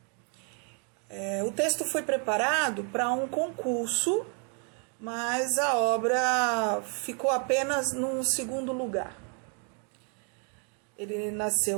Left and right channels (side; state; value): left; quieter; 39.9 dB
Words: O texto foi preparado para um concurso, mas a obra ficou apenas num segundo lugar. Ele